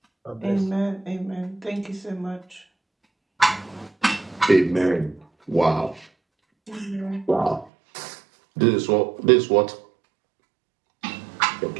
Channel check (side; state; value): left; drops out; at 7.7 s